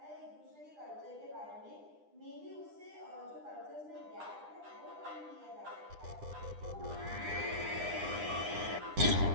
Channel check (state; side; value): late; left; 9.9 ms